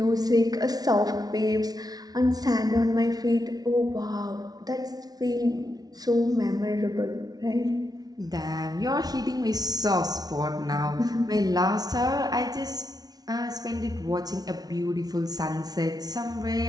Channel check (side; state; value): left; late; 0.19 ms